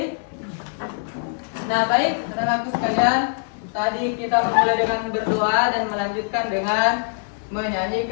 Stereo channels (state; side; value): silent; right; 64 dB below the other